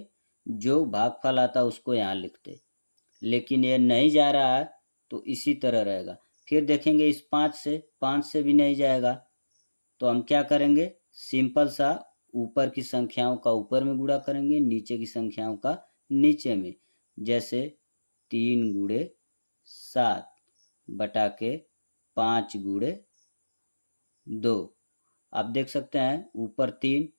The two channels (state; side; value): inverted; both; correlation -1.00